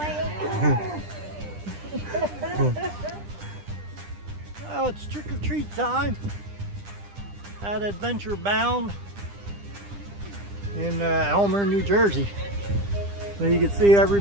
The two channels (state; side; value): late; left; 9.9 ms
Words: Well, it's trick or treat time at Adventure Bound in Elmer, New Jersey. So you can see